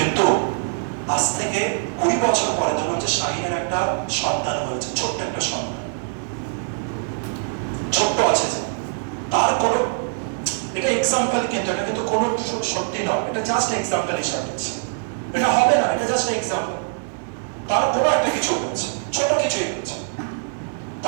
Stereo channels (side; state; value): left; silent; digital silence